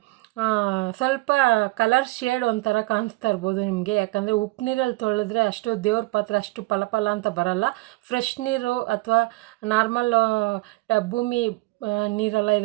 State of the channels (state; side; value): quieter; left; 22.0 dB